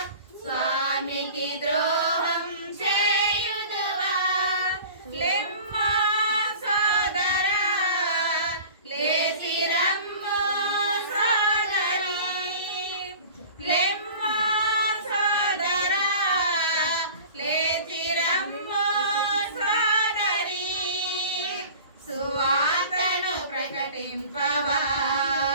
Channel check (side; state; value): both; inverted; correlation -0.41